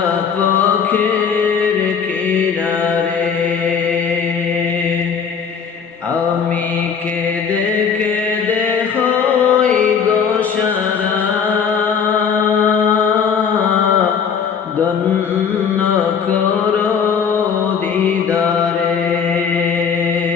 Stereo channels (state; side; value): quieter; right; 6.7 dB